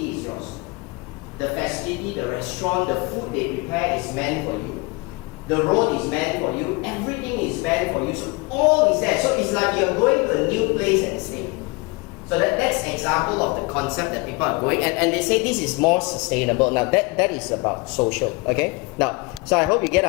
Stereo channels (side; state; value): right; quieter; 26.3 dB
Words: is yours. The facility, the restaurant, the food they prepare is meant for you. The road is meant for you. Everything is meant for you. So all is there. So it's like you're going to a new place and staying. So that's an example of the concept that people are going. And they say this is more sustainable. Now that is about social. Okay? Now, so I hope you get